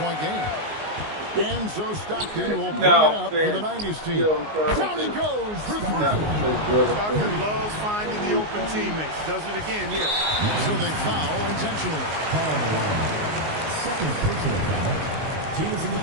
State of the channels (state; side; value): late; left; 19 ms